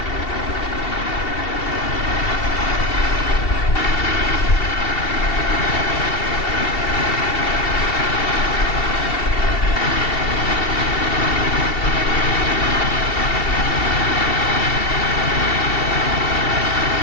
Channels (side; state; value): right; late; 2.7 ms